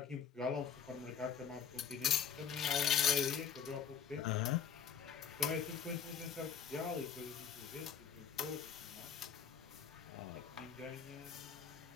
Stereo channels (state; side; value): quieter; right; 7.6 dB